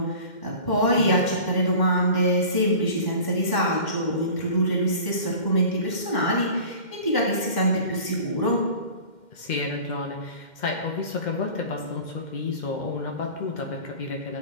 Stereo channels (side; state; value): right; late; 2.1 ms